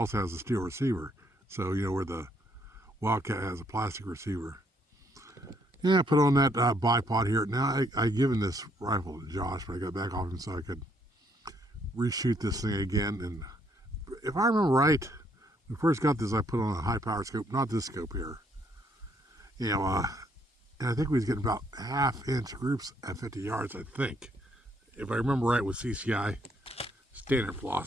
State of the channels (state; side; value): normal; both; correlation 0.70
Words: has a steel receiver. So, you know, where the Wildcat has a plastic receiver. Yeah, I put on that bipod here. Now, I given this rifle to Josh, but I got back off him so I could reshoot this thing again. And if I remember right, when I first got this, I put on a high power scope, not this scope here. You know, and I think we was getting about half-inch groups at 50 yards, I think. If I remember right with CCI standard